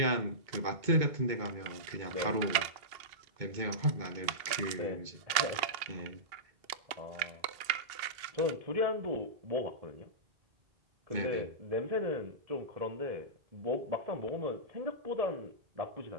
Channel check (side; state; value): left; late; 2.7 ms